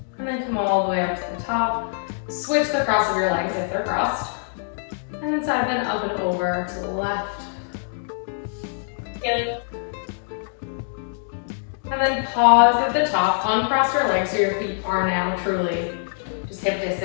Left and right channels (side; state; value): right; silent; digital silence